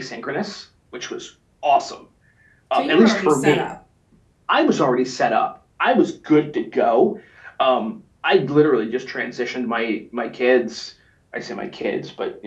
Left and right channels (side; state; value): both; identical; correlation 1.00